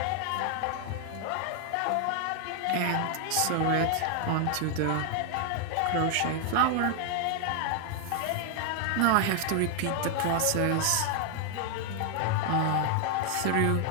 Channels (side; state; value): both; different; correlation 0.00